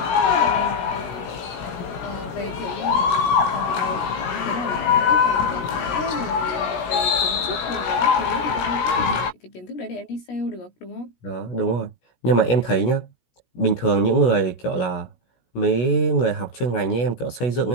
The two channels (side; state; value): right; late; 17 ms